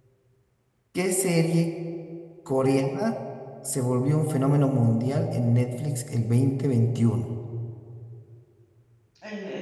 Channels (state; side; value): identical; both; correlation 1.00